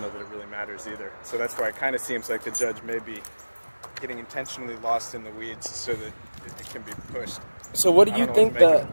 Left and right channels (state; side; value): inverted; both; correlation -1.00